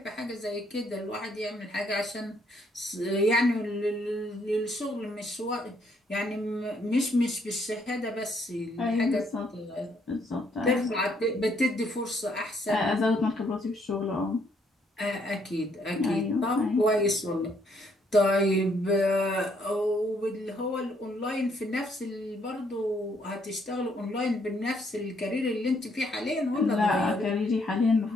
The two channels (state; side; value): normal; both; correlation 0.70